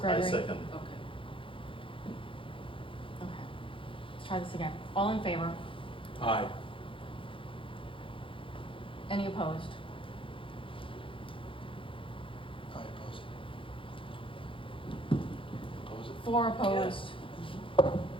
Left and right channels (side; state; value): right; late; 0.25 ms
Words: Gregory. second. Okay. Okay. Let's try this again. All in favor? Aye. Any opposed? I oppose it. Oppose it? 4 opposed.